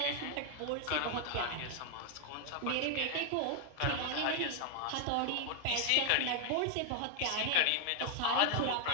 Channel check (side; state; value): both; different; correlation 0.00